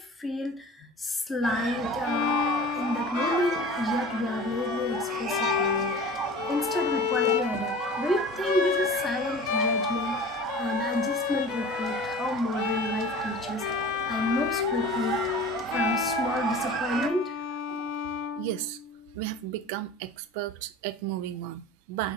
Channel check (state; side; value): normal; both; correlation 0.40